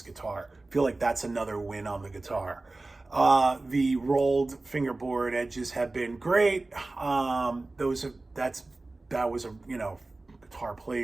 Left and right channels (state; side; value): quieter; left; 3.1 dB